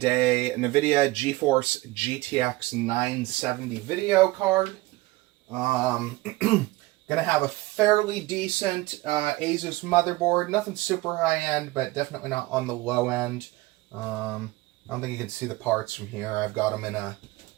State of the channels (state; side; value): quieter; left; 20.0 dB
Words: a NVIDIA GeForce GTX970 video card. Gonna have a fairly decent Asus motherboard. Nothing super high-end, but definitely not on the low end. I don't think you can see the parts from here. I've got them got